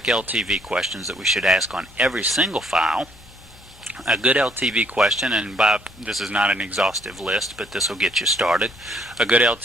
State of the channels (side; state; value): left; noise; hum, 23 dB below the sound